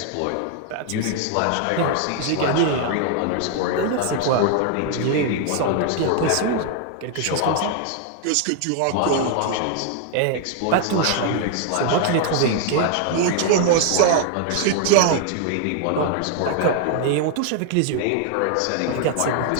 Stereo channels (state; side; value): different; both; correlation 0.00